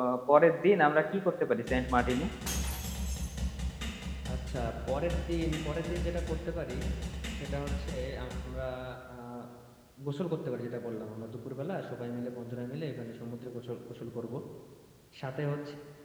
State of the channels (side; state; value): both; identical; correlation 1.00